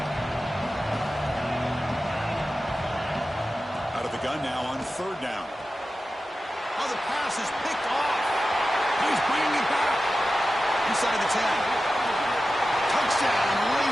Out of the gun now on 3rd down. Oh, the pass is picked off. He's bringing it back. Inside the 10. Touchdown,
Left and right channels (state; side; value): normal; both; correlation 0.93